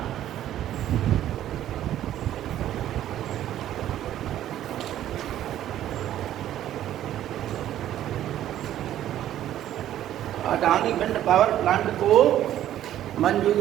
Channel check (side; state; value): left; quieter; 12.1 dB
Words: Adani wind power plant को